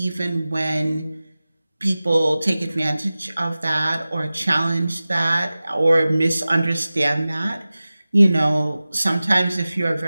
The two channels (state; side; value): inverted; both; correlation -0.97